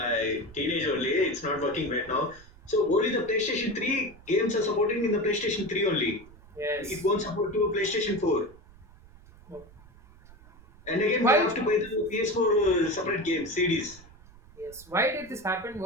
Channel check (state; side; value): noise; right; rumble, 23 dB below the sound